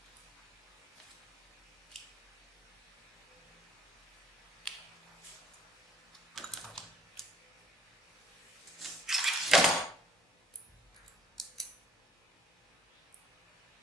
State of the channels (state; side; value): normal; both; correlation 0.59